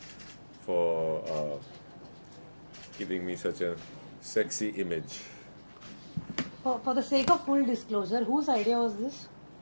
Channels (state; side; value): inverted; both; correlation -1.00